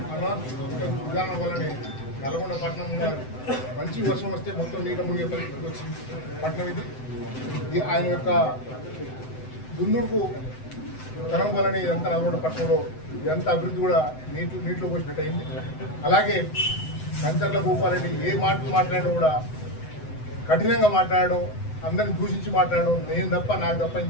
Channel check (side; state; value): right; late; 7.9 ms